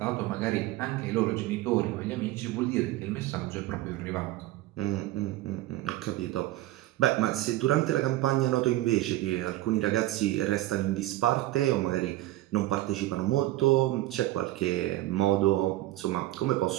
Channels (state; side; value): quieter; left; 16.3 dB